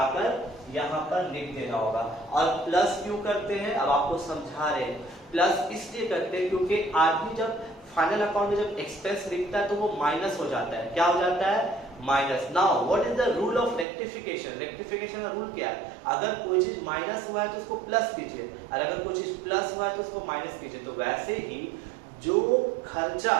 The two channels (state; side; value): drops out; left; at 13.9 s